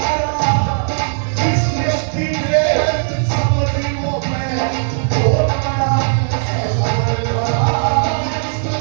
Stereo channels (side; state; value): left; silent; digital silence